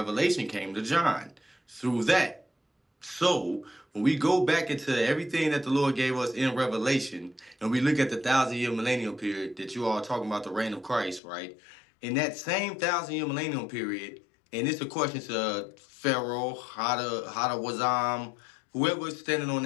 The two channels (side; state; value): right; drops out; at 11.2 s